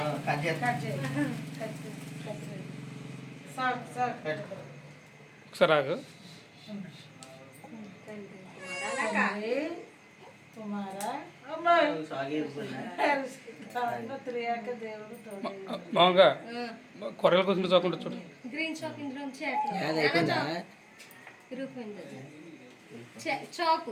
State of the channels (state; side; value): identical; both; correlation 1.00